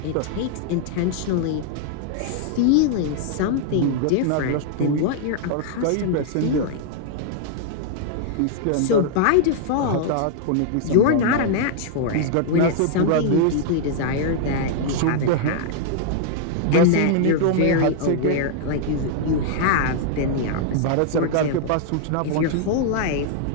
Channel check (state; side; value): different; both; correlation -0.01